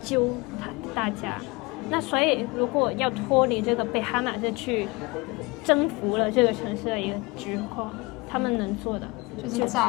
救大家。那所以如果要脫離這個被哈馬斯去征服了這個城市的一個局況，他們能做的就是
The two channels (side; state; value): right; quieter; 25.0 dB